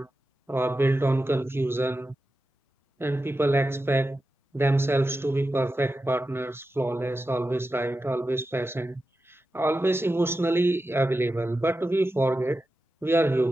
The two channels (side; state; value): both; normal; correlation 0.91